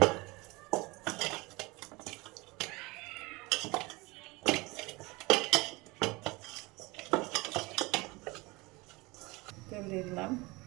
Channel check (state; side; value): quieter; left; 23.8 dB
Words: তেল দিয়ে দিলাম।